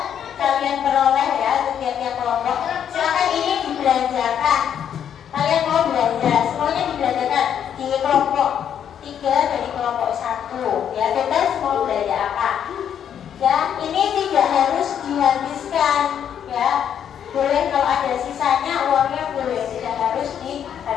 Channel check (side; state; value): right; quieter; 8.9 dB